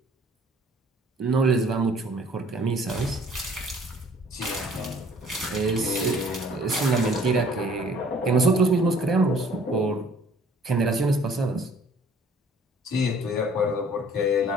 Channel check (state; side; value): normal; both; correlation 0.55